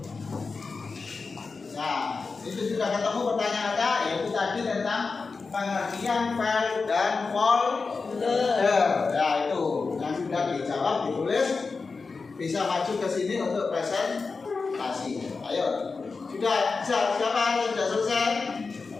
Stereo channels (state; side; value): quieter; right; 4.4 dB